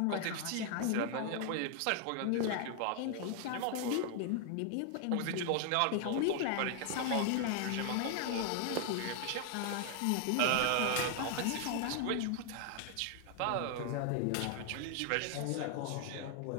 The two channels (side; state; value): both; different; correlation 0.00